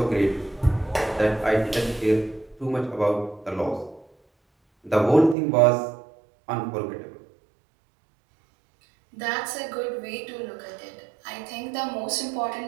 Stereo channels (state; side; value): drops out; left; at 5.4 s